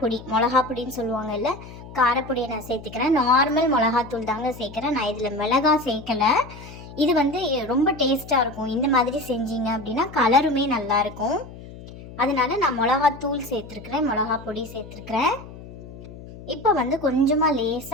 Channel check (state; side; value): noise; left; hum, 15 dB below the sound